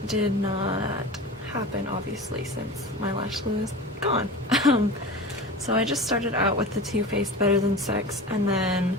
did not happen, obviously, since my lash glue is gone. So I just started out with the Too Faced Better Than Sex, and then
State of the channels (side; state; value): both; normal; correlation 0.32